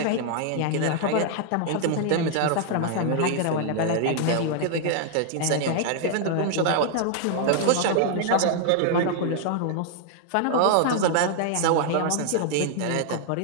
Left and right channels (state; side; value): different; both; correlation 0.00